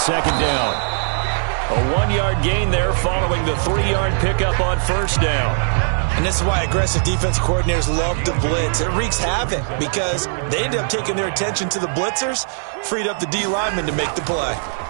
down. A 1-yard gain there following the 3-yard pickup on first down. And this is why aggressive defensive coordinators love to blitz. It wreaks havoc because they end up taking their attention to the blitzers, freed up the D lineman to make the play.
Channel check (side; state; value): left; silent; digital silence